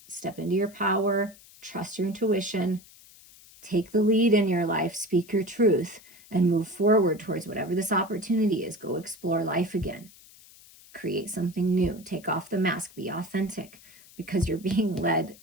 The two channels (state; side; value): noise; left; hiss, 23 dB below the sound